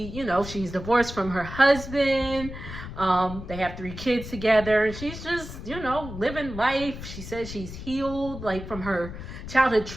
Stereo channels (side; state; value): left; noise; rumble, 10 dB below the sound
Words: divorced from her husband. They have 3 kids together. She's just, living life. She says she's healed, like, from her childhood